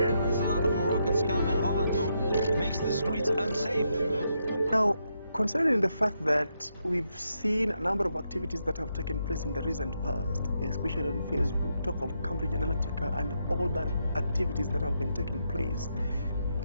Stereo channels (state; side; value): inverted; both; correlation -0.80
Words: There's a lot of Moroccans coming home and makes the streets unsafe. Now, Considering the fact that we've seen a number of activities that have taken place in the recent past, especially on Facebook, talk of Cambridge Analytica and all the activities that have been taking place,